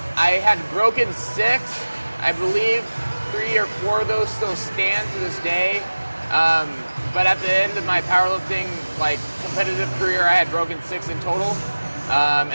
had broken 6. I believe 3 or 4 of those still stand to this day. But at the end of my powerlifting competitive career, I had broken 6 in total,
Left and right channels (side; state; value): both; inverted; correlation -1.00